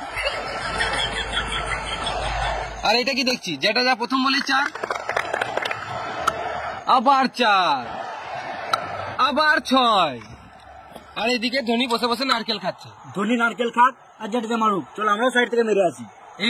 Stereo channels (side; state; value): both; identical; correlation 1.00